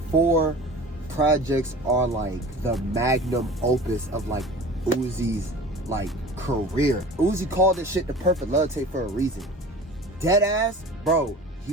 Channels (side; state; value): both; normal; correlation 0.39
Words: 4 projects are like the magnum opus of like Uzi's like career. Uzi called this shit The Perfect Love Tape for a reason. Dead ass, bro,